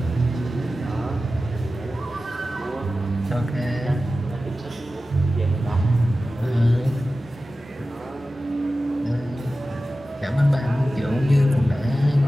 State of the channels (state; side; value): normal; both; correlation 0.94